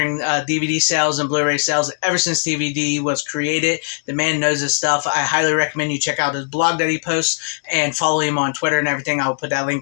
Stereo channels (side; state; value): right; silent; digital silence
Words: DVD sales and Blu-ray sales ever since DVD was created. The man knows his stuff. I highly recommend you check out his blog that he posts and follow him on Twitter and everything. I will put that